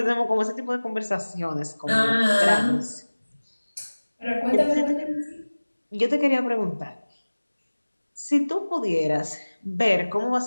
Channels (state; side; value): inverted; both; correlation -1.00